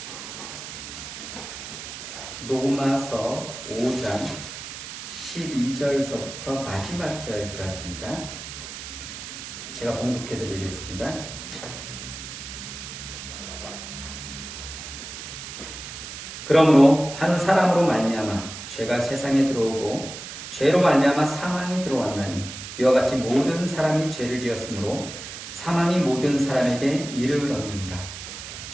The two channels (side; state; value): right; noise; hiss, 10 dB below the sound